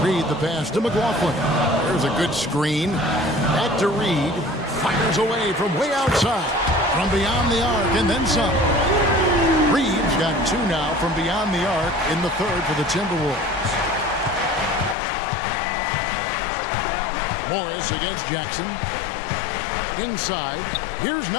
Reed the pass to McLaughlin. There's a good screen. Back to Reed. Fires away from way outside. From beyond the arc and then some. Reed's got 2 now from beyond the arc in the third for the Timberwolves. Morris against Jackson. Inside. Here's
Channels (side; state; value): right; drops out; at 15.0 s